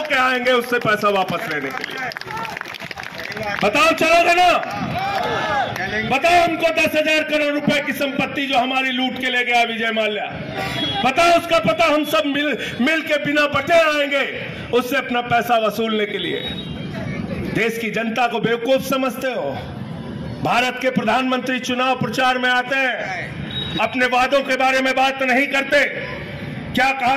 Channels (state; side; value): identical; both; correlation 1.00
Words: आएंगे उससे पैसा वापस लेने के लिए। बताओ चलोगे ना? बताओ हमको 10,000 करोड़ रुपए की संपत्ति जो हमारी लूट के ले गया विजय माल्या, बताओ उसका पता। हम सब मिल के बिना बटे आएंगे उससे अपना पैसा वसूलने के लिए। देश की जनता को बेवकूफ समझते हो। भारत के प्रधानमंत्री चुनाव प्रचार में आते हैं, अपने वादों के बारे में बात नहीं करते। क्या